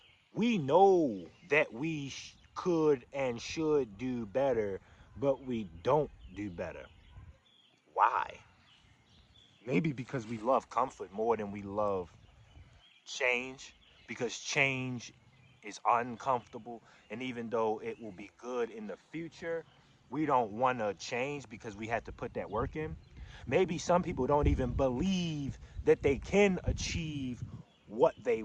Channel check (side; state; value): both; identical; correlation 1.00